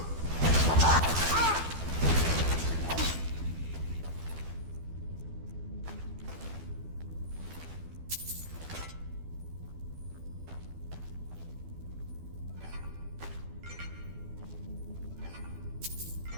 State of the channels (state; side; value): late; left; 12 ms